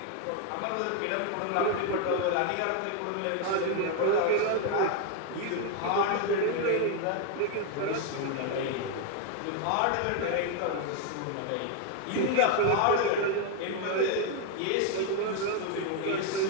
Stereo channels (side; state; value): both; different; correlation 0.01